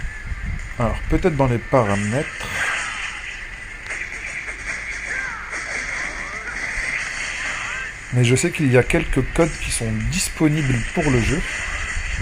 Alors peut-être dans les paramètres, mais je sais qu'il y a quelques codes qui sont disponibles pour le jeu.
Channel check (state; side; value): identical; both; correlation 1.00